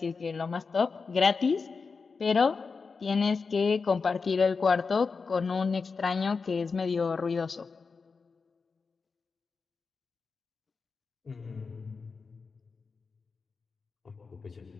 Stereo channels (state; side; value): quieter; right; 4.8 dB